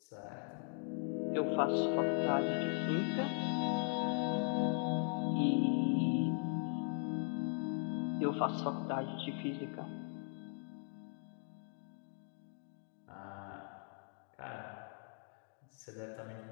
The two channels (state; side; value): silent; right; 52 dB below the other